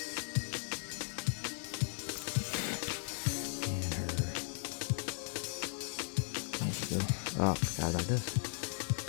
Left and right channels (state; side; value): silent; right; 53 dB below the other